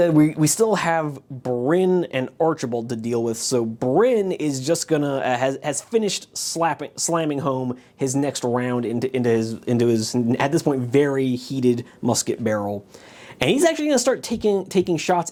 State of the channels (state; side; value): identical; both; correlation 1.00